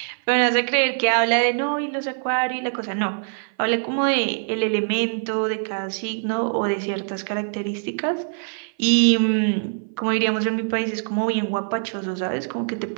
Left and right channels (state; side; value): silent; left; 58 dB below the other